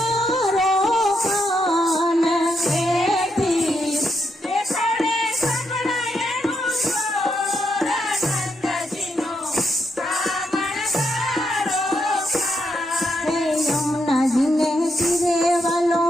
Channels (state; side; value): normal; both; correlation 0.79